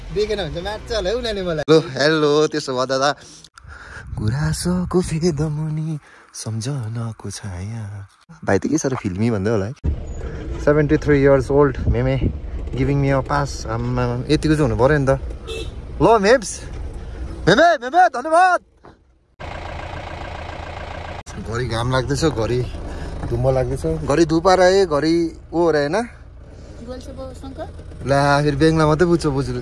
देखेन भने मार्छ होला उनीहरूले मलाई। हेलो त्यसो भए दादा गुराँसको फेदमुनि सम्झनाको छाया भाइ त के साह्रो फिल्मी भन्दै होला है। 73 years old मेमे गिभिङ मी अ पास। आम्मा यतिको चाहिँ हुनु पऱ्यो नि त। ल मेम्स मेमे मेमे धन्यवाद। घरि घाम लाग्दैछ, घरि धुम्म लाग्दैछ, घरि धुपार आए, घरि ओ हो र होइन ला फेरि बेङ्गला मात्रै बुझ्छ बुझ्नु।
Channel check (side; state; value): both; identical; correlation 1.00